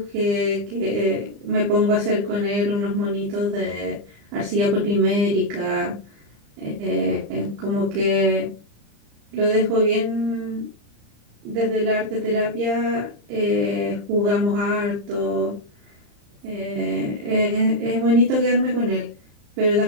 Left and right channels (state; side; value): late; left; 35 ms